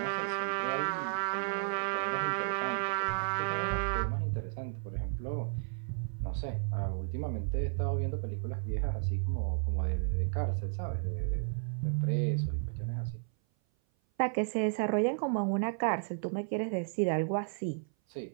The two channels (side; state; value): left; silent; 56 dB below the other